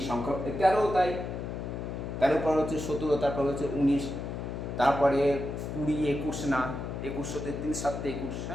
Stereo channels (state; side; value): noise; left; hum, 5 dB below the sound